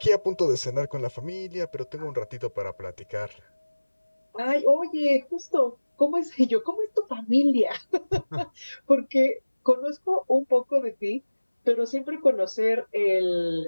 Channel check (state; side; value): inverted; both; correlation -1.00